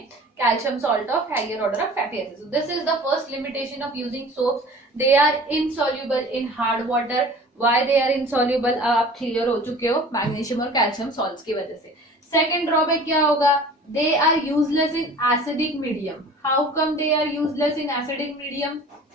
calcium salt of higher order of fatty acid. This is the first limitation of using soaps, they are insoluble in hard water. Why they are insoluble आप क्लियर हो चुके हो, मैग्नीशियम और कैल्शियम सॉल्ट्स की वजह से। सेकेंड ड्रॉबैक क्या होगा, they are useless in acidic medium. How come they are useless in acidic medium?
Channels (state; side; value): normal; both; correlation 0.44